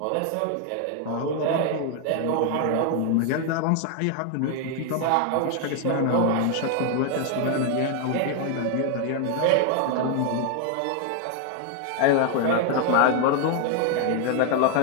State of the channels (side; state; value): both; different; correlation 0.01